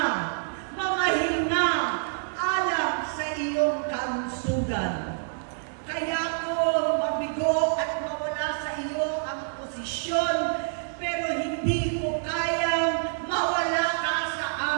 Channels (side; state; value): left; silent; 60 dB below the other